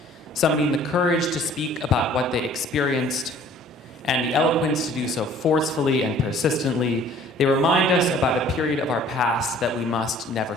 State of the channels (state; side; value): normal; both; correlation 0.53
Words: Summoning the courage to speak about what they experienced and the eloquence to do so forcefully and persistently, they remind us about a period of our past that we must never